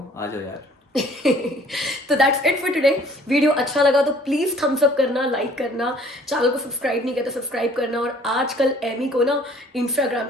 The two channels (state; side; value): normal; both; correlation 0.55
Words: आ जाओ यार। तो that's it for today. Video अच्छा लगा तो प्लीज थम्स अप करना, लाइक करना, चैनल को सब्सक्राइब नहीं किया तो सब्सक्राइब करना। और आजकल एमी को ना इंस्टाग्राम